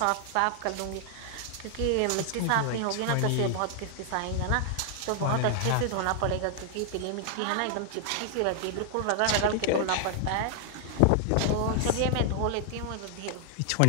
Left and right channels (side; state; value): both; different; correlation 0.00